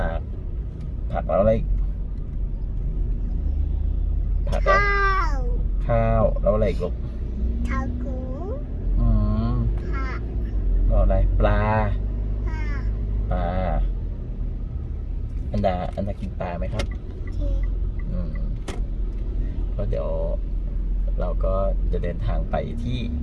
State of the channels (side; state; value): both; identical; correlation 1.00